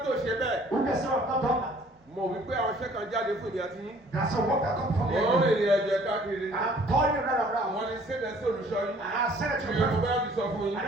tó ṣe bẹ́ẹ̀. Who can say I've not done that? Mo wí pé àwọn iṣẹ́ kan jáde fún ìdí àti yín. There's a work that comes from Mo ń you. rìnrìn ẹ̀jẹ̀ káàkiri. I'm calling you right around. Wọ́n ní sédè sí olùṣọ́ yín. And I said it to Ìyẹn mo you. bá ti sọ fún I yín.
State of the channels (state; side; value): normal; both; correlation 0.56